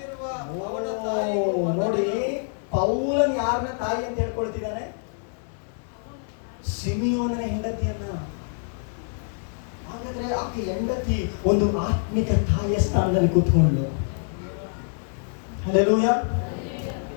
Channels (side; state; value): right; silent; 61 dB below the other